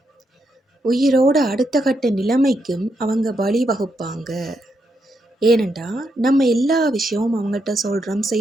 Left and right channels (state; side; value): normal; both; correlation 0.81